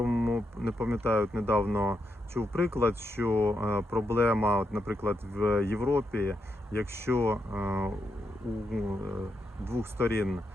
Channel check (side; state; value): both; normal; correlation 0.82